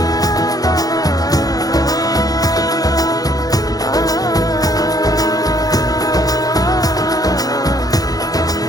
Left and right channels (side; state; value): right; late; 0.18 ms